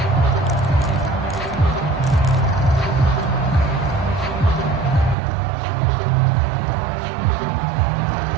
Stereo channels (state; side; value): drops out; left; at 5.2 s